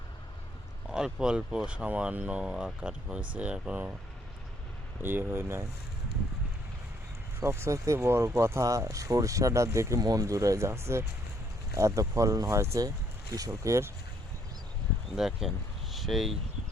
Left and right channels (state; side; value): normal; both; correlation 0.68